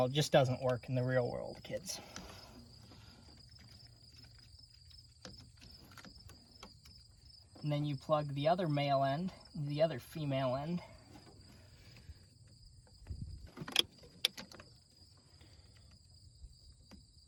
It just doesn't work in the real world, kids. And then you plug the other male end into the other female end.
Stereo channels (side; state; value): both; identical; correlation 1.00